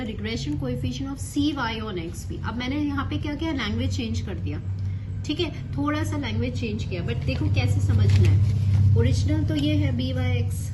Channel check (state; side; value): identical; both; correlation 1.00